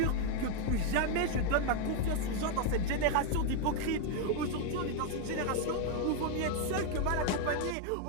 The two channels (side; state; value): both; different; correlation 0.01